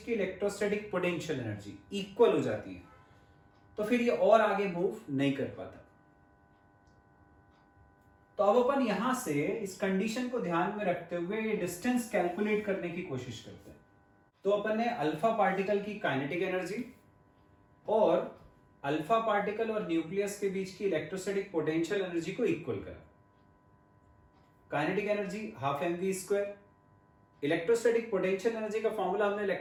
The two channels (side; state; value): both; identical; correlation 1.00